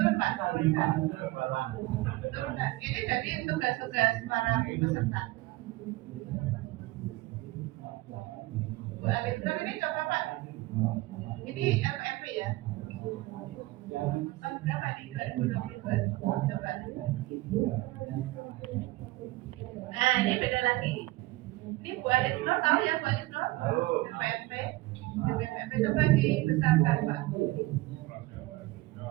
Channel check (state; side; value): quieter; left; 19.5 dB